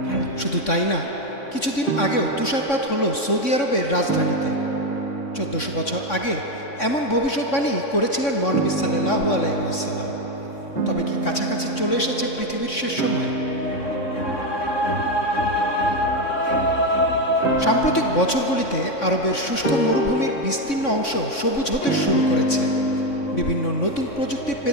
শুধু তাই না, কিছুদিন আগেও তুষারপাত হলো সৌদি আরবের রাজধানীতে। 1400 বছর আগে এমন ভবিষ্যৎবাণী করেছিলেন মহানবী সাল্লাল্লাহু আলাইহি ওয়াসাল্লাম। তবে কি কাছাকাছি চলে এসেছে পৃথিবীর শেষ সময়? সাম্প্রতিক বছরগুলিতে আরবের শুষ্ক মরুভূমির বিস্তীর্ণ অংশ সবুজ হতে শুরু করেছে। বিভিন্ন নতুন প্রযুক্তির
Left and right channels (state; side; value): late; right; 3.6 ms